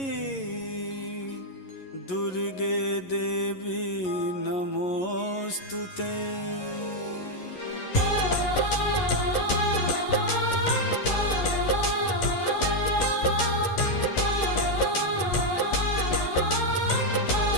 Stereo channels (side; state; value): right; late; 11 ms